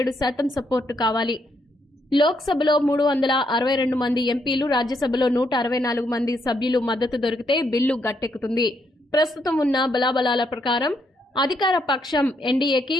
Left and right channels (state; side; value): normal; both; correlation 0.76